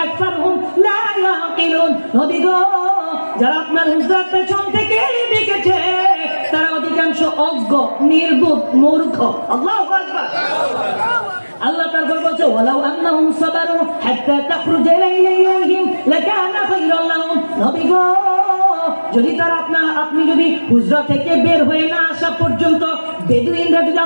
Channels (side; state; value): both; inverted; correlation -1.00